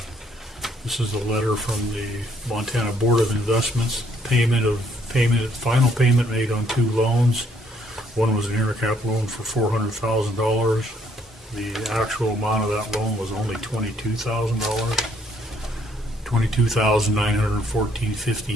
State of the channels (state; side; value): normal; both; correlation 0.67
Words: This is a letter from the Montana Board of Investments. Final payment made on 2 loans. One was an intercap loan for $400,000. The actual amount of that loan was only $22,000.